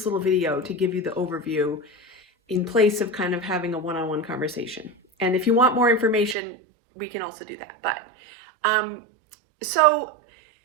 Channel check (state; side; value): drops out; left; at 6.4 s